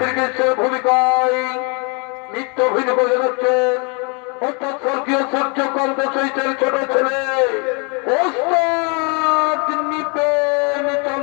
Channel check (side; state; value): right; quieter; 33.7 dB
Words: ভূমিকায় নৃত্য অভিনয় করে যাচ্ছে অর্থাৎ স্বর্গীয় সূর্যকান্ত চৈতের ছোট ছেলে ওস্তাদ নৃপেন